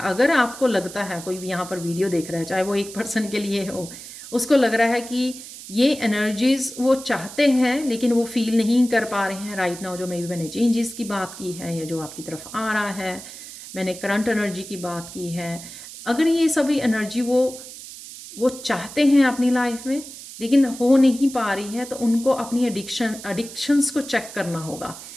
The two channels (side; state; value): right; noise; hiss, 14 dB below the sound